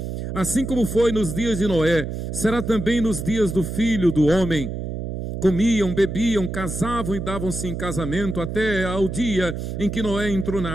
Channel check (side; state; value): right; noise; hum, 5 dB below the sound